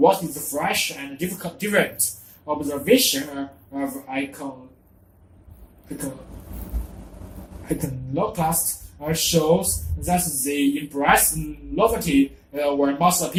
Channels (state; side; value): identical; both; correlation 1.00